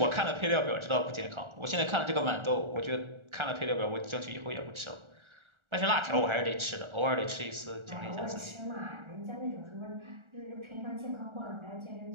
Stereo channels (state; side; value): late; left; 1.4 ms